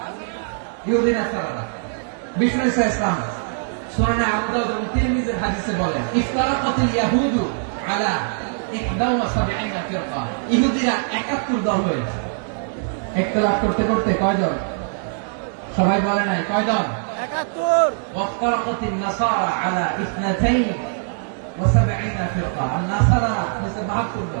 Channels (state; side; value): silent; left; digital silence